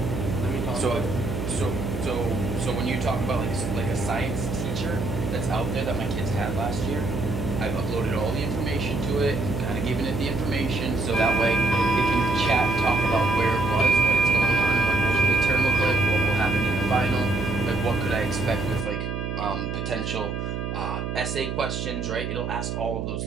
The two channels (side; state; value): right; noise; hum, 4 dB below the sound